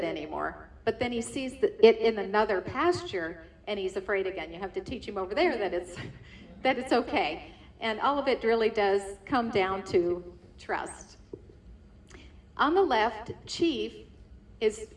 anymore. But then he sees it in another pasture and he's afraid again. You have to teach him over there that it's okay. And all of it really does come down to trust. On the left, Chief is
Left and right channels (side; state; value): both; identical; correlation 1.00